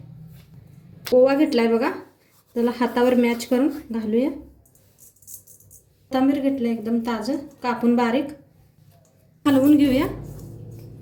ओवा घेतलाय बघा, त्याला हातावर मॅच करून घालूया। कोथिंबीर घेतलं एकदम ताजं कापून बारीक, हलवून घेऊया।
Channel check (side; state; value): both; identical; correlation 1.00